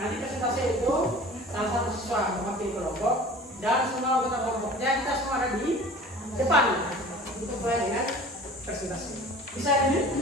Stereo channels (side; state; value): both; normal; correlation 0.42